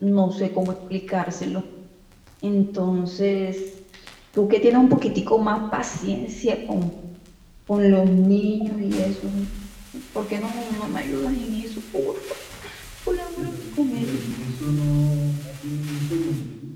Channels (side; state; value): both; identical; correlation 1.00